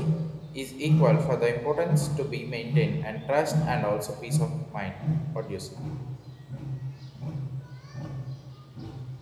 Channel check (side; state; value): both; identical; correlation 1.00